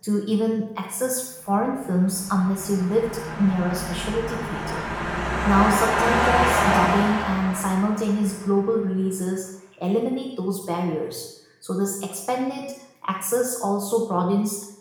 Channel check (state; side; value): identical; both; correlation 1.00